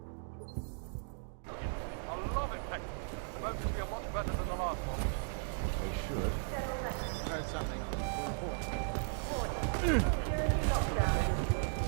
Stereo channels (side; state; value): left; silent; digital silence